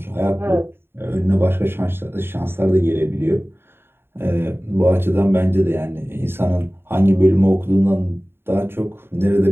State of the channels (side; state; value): left; late; 0.11 ms